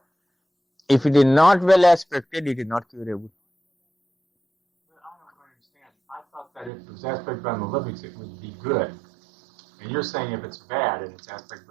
If it is not well aspected, it is not curable. But I don't understand. I thought that if it was aspected by malefics, it would be good. And you're saying if it's bad and it's aspected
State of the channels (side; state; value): left; drops out; at 6.7 s